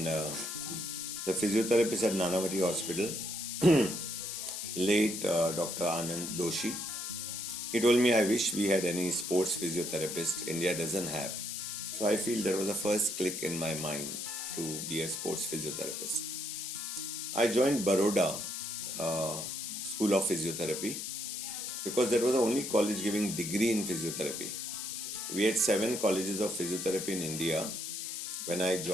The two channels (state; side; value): noise; left; hiss, 5 dB below the sound